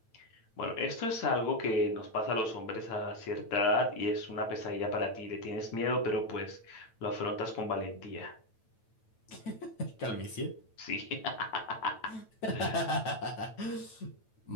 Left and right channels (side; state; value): right; late; 9.0 ms